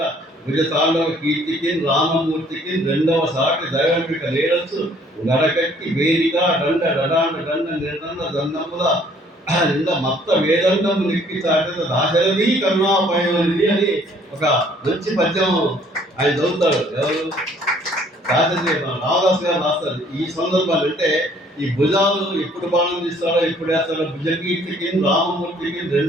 విజతాండవ కీర్తికి రామమూర్తికి 2వ సాటి దైవంపిక లేడచ్చు గడకట్టి వేదిక దండ డడాండ దండ నిర్దండ దండముల నింద మత్త వేదండము నిక్కి చాటిన దాశరథి కరుణాపయోనిధి అని ఒక మంచి పద్యం ఆయన చదువుతాడు. ఎవరు? దాశరథి రామదాస్ గారు రాస్తారు. ఈ సందర్భాలు అంటే ఈ భుజాలు ఎప్పుడు బాణం తీస్తాడో ఎప్పుడు వేస్తాడో, భుజకీర్తికి రామమూర్తికి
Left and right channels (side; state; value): both; normal; correlation 0.59